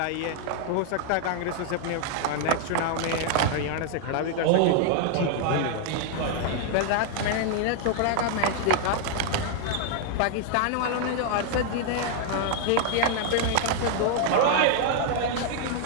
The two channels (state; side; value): different; both; correlation 0.00